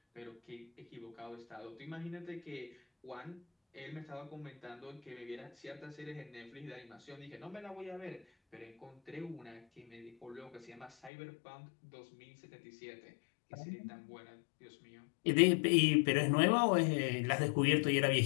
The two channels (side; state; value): right; drops out; at 11.1 s